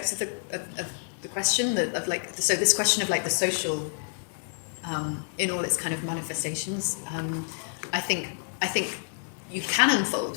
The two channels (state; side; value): silent; right; digital silence